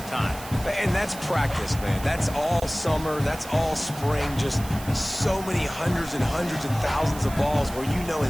time. And that's practice, man. That's all summer. That's all spring. Just so many hundreds and hundreds and thousands of balls where you know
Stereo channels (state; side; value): noise; right; hiss, 15 dB below the sound